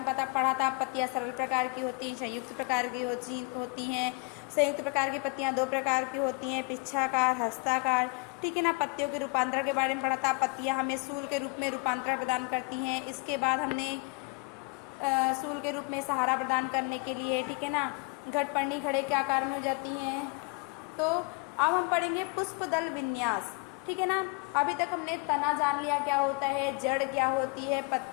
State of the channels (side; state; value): right; quieter; 30.3 dB